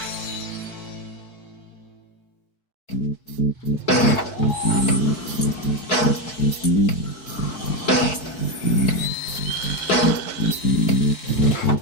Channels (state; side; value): late; right; 4.6 ms